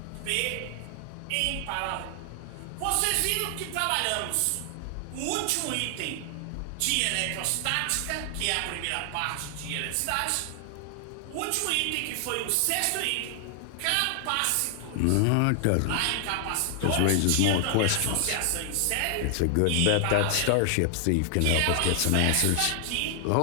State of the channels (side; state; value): both; different; correlation 0.00